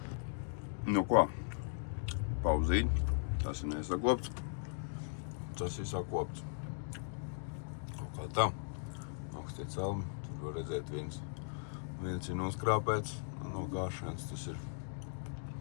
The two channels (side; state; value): right; silent; digital silence